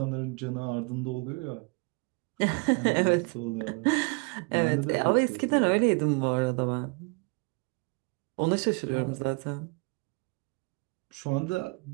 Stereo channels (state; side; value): quieter; left; 31.6 dB